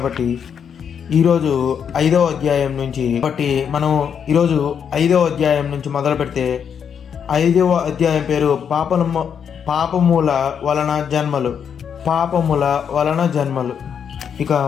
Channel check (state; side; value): quieter; right; 7.6 dB